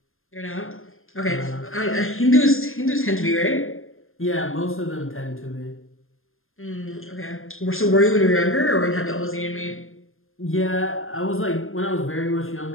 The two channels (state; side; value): late; right; 0.60 ms